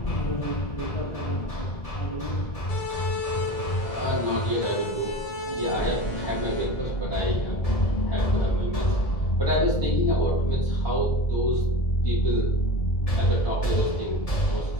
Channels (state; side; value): late; right; 1.7 ms